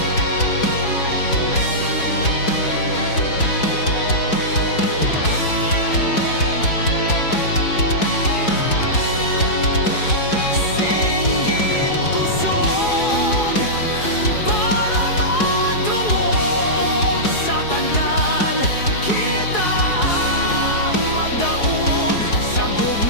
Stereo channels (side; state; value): right; late; 4.7 ms